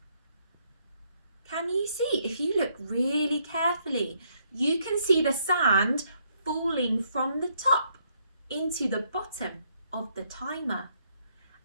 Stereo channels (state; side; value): inverted; both; correlation -0.72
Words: Can you see? If you look really carefully, you can see the sand falling from the top into the bottom of the timer.